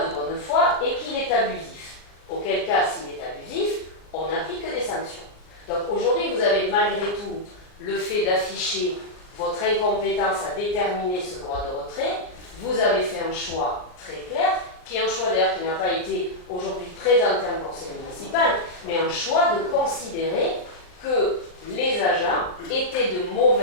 de bonne foi et qu'il est abusif. Auquel cas, s'il est abusif, on n'applique que des sanctions. Donc aujourd'hui, vous avez malgré tout le fait d'afficher votre incompétence à déterminer ce droit de retrait. Vous avez fait un choix très clair, qui est un choix d'ailleurs qui n'a pas été aujourd'hui présenté en conseil municipal, mais un choix de considérer que les agents étaient de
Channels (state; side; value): late; right; 39 ms